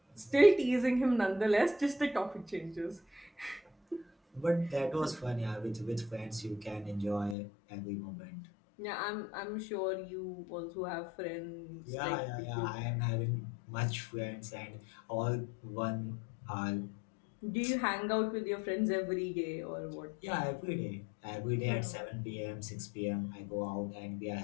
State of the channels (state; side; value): drops out; right; at 7.4 s